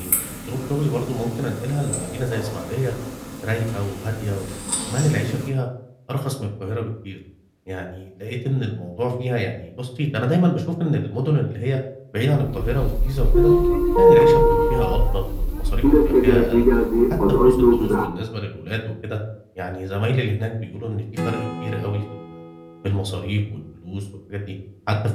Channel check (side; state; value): both; identical; correlation 1.00